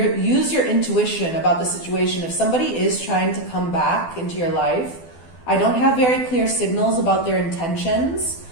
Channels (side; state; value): right; late; 12 ms